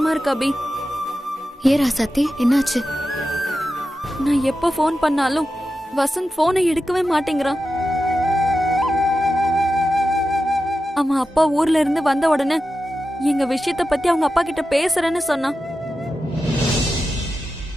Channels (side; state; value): both; normal; correlation 0.91